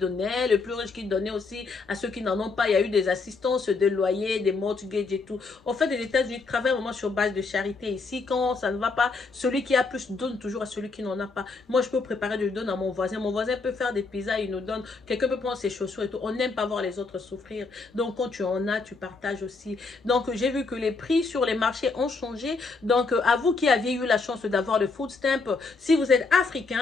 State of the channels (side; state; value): right; quieter; 4.1 dB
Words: les plus riches qui donnaient aussi à ceux qui n'en ont pas. Il y a eu des assistances de loyer, des mortgages et tout. En fait, les États-Unis travaillent vraiment sur base de charité. Ici, quand ça ne va pas, celui qui a plus donne toujours à celui qui n'en a pas. Moi, je peux préparer, je donne à mon voisin. Mon voisin peut faire des pizzas, il nous donne. Quelqu'un peut prendre ses chaussures et tout. On n'aime pas voir les autres souffrir. Donc, quand tu en as, tu partages aussi. Donc, j'ai vu que les prix sur les marchés ont changé. Donc, à vous qui aviez eu la chance d'avoir le food stamp, si vous êtes